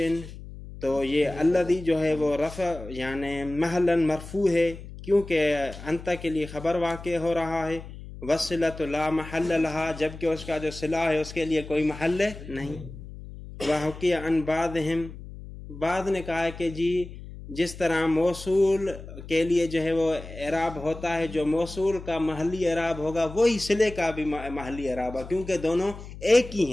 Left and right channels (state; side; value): noise; left; hum, 13 dB below the sound